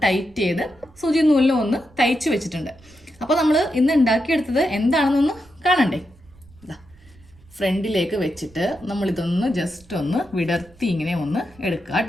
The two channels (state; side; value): noise; right; rumble, 26 dB below the sound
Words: ടൈറ്റ് ചെയ്ത് സൂചി നൂലിലും ഒന്ന് തയ്ച്ച് വെച്ചിട്ടുണ്ട്. അപ്പോൾ നമ്മൾ ഇന്ന് ഉണ്ടാക്കിയെടുത്തത് എന്താണെന്നൊന്ന് കാണണ്ടേ. ഫ്രണ്ടിലേക്ക് വെച്ചിട്ട് നമ്മളിതൊന്ന് ജസ്റ്റ് ഒന്ന് വിടർത്തി ഇങ്ങനെ ഒന്ന് എടുക്കുക